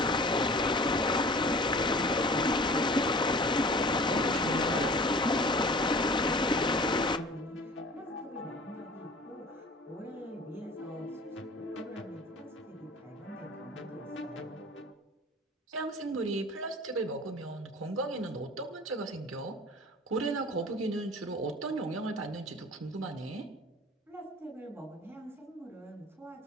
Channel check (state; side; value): normal; both; correlation 0.44